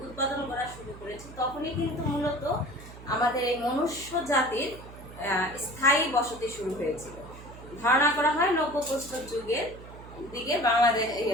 উৎপাদন করা শুরু করেছি, তখনই কিন্তু মূলত আমাদের এই মনুষ্য জাতির স্থায়ী বসতি শুরু হয়েছিল। ধারণা করা হয় নব্যপ্রস্তর যুগের দিকে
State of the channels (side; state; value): right; noise; hum, 16 dB below the sound